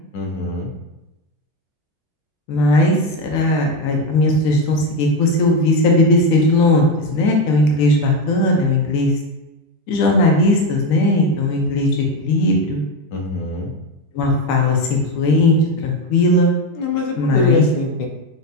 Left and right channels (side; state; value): both; normal; correlation 0.13